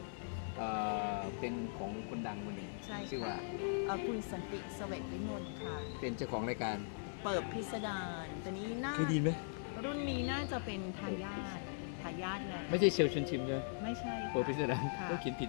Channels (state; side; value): silent; right; digital silence